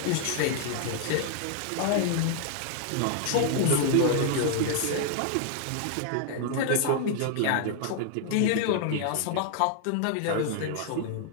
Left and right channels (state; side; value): different; both; correlation 0.00